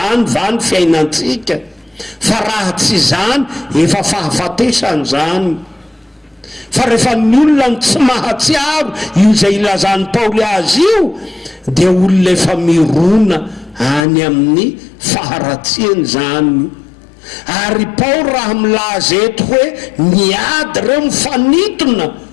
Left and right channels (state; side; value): drops out; right; at 14.1 s